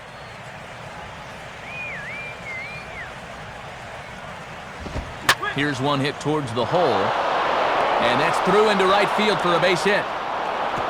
Here's one hit towards the hole. And that's through into right field for a base hit.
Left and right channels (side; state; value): both; identical; correlation 1.00